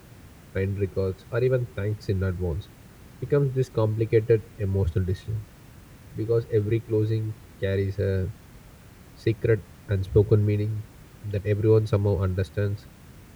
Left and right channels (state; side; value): identical; both; correlation 1.00